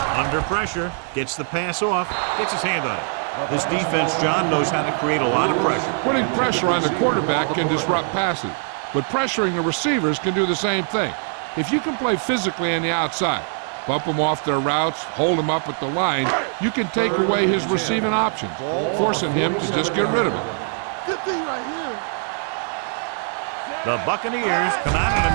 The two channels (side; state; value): left; silent; 56 dB below the other